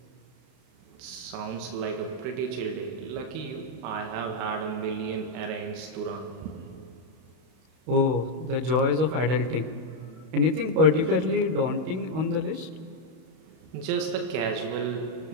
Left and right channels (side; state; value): left; late; 32 ms